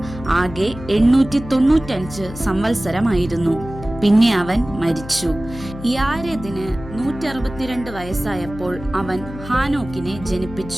ആകെ 895 സംവത്സരമായിരുന്നു. പിന്നെ അവൻ മരിച്ചു. യാരെദിന് 162 വയസ്സായപ്പോൾ അവൻ ഹാനോക്കിനെ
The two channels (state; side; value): noise; left; hum, 13 dB below the sound